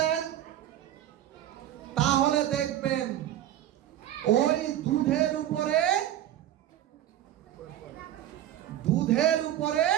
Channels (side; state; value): left; quieter; 12.2 dB